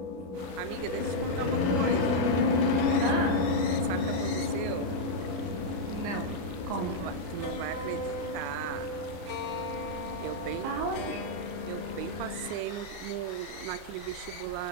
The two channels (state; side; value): late; left; 33 ms